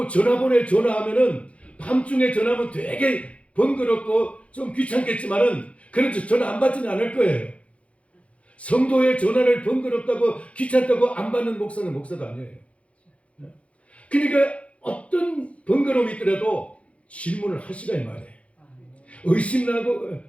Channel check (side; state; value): right; late; 0.063 ms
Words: 전화번호에 전화하면은 밤중에 전화하면 되게 번거롭고 좀 귀찮겠지만은 그래도 전화 안 받지는 않을 거예요. 성도의 전화를 번거롭다고 귀찮다고 안 받는 목사는 목사도 아니에요. 그러니까 어떤 번거로움이 있더라도 질문을 하시라 이 말이에요. 의심나고